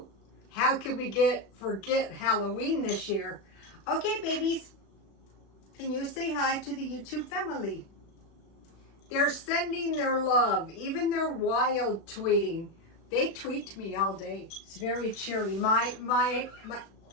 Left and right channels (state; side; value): late; right; 36 ms